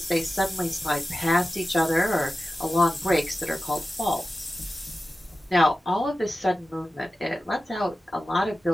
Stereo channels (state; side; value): normal; both; correlation 0.94